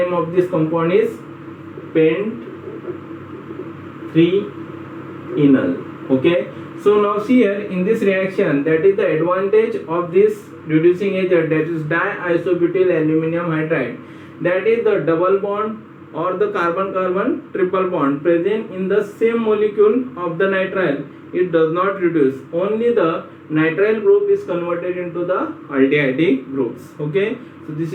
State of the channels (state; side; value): identical; both; correlation 1.00